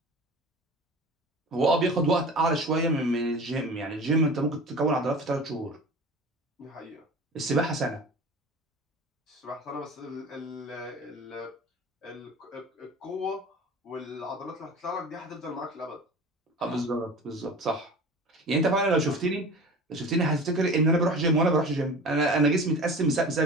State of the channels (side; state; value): both; normal; correlation 0.37